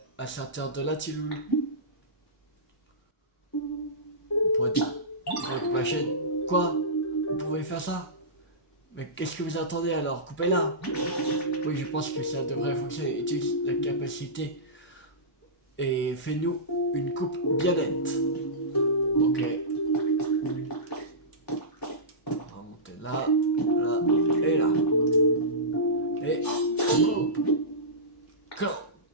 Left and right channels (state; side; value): normal; both; correlation -0.19